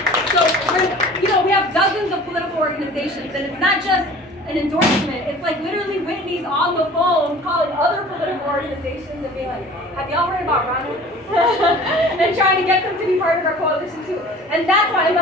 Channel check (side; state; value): both; normal; correlation 0.45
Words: So we have dozens of political organizations, and it's not just an endorsement. It's like literally Whitney's on the phone calling other political organizations and being like, have y'all heard about Ronald? And trying to get them to be part of our coalition too. And that's why I